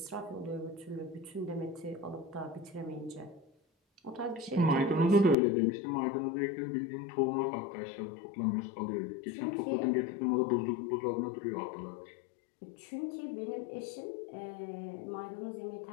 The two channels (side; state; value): right; drops out; at 5.4 s